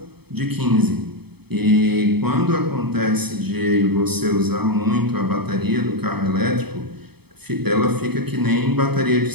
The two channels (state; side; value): late; left; 0.97 ms